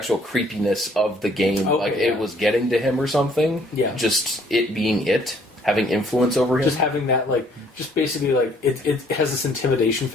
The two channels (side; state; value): both; normal; correlation 0.62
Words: creepiness of the game, it was getting to him or something. Yeah. Just it being having influence over him. Just having that, just basically, it has this intimidation